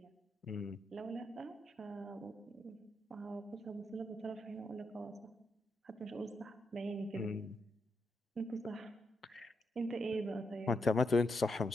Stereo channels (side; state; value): both; normal; correlation 0.82